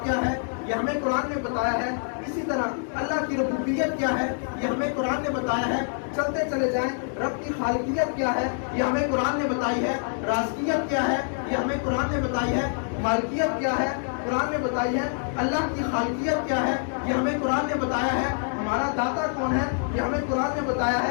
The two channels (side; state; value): right; silent; 58 dB below the other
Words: کیا ہے یہ ہمیں قرآن نے بتایا ہے، اسی طرح اللہ کی ربوبیت کیا ہے یہ ہمیں قرآن نے بتایا ہے۔ چلتے چلے جائیں، رب کی خالقیت کیا ہے یہ ہمیں قرآن نے بتائی ہے، رازقیت کیا ہے یہ ہمیں قرآن نے بتائی ہے، مالکیت کیا ہے قرآن نے بتائی ہے، اللہ کی خالقیت کیا ہے یہ ہمیں قرآن نے بتایا ہے، ہمارا داتا کون ہے یہ ہمیں قرآن نے بتایا